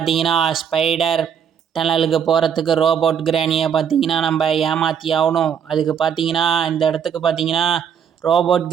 ஸ்பைடர் டனலுக்கு போகிறதுக்கு ரோபோட் கிராணியை பார்த்தீங்கன்னா நம்ம ஏமாற்றி ஆகணும். அதுக்கு பார்த்தீங்கன்னா இந்த இடத்துக்கு பார்த்தீங்கன்னா ரோபோட்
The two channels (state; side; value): quieter; left; 7.9 dB